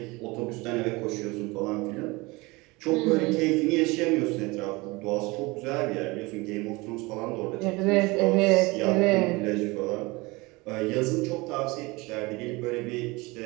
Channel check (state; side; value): quieter; left; 23.7 dB